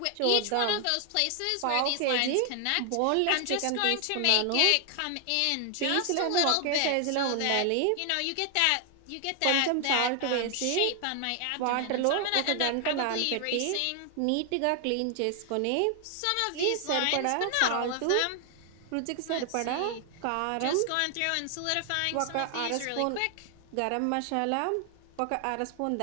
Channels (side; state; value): both; different; correlation 0.00